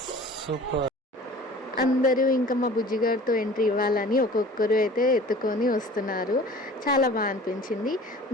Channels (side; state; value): both; normal; correlation 0.44